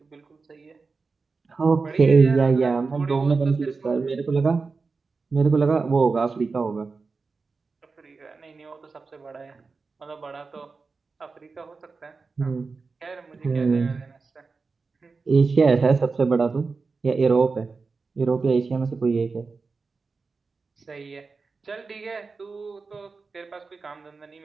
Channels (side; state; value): left; quieter; 4.4 dB